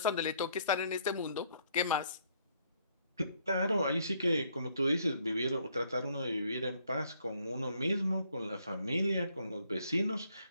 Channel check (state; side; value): inverted; both; correlation -0.67